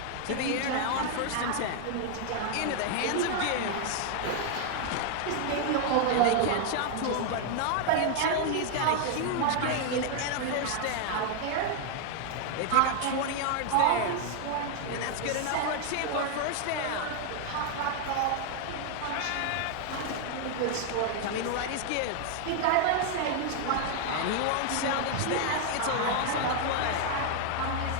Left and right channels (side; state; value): both; different; correlation 0.00